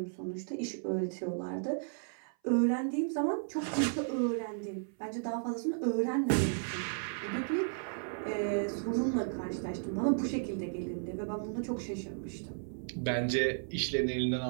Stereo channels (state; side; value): silent; left; 55 dB below the other